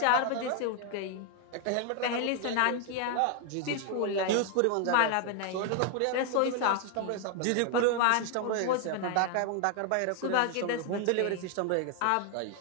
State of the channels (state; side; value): different; both; correlation 0.00